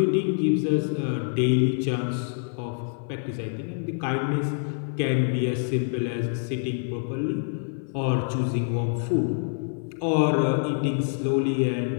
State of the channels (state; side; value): silent; right; 56 dB below the other